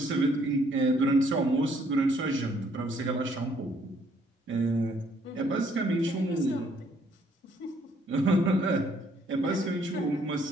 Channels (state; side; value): normal; both; correlation 0.66